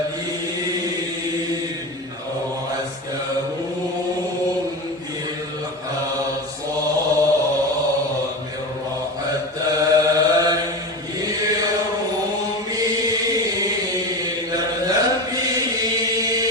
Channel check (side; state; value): both; normal; correlation 0.24